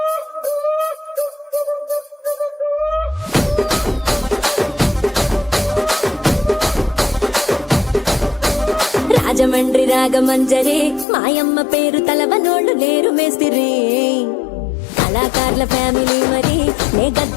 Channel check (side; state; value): right; drops out; at 11.1 s